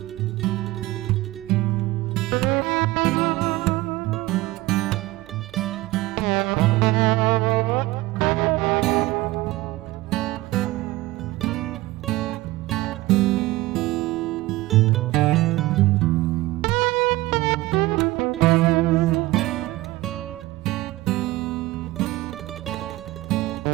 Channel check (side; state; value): left; quieter; 19.0 dB